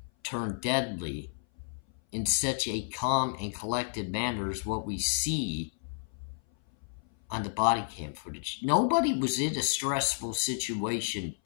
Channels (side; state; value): right; silent; 57 dB below the other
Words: turn deadly in such a calm and collected manner as what we see on the body cam footage? Nobody was in a stressful situation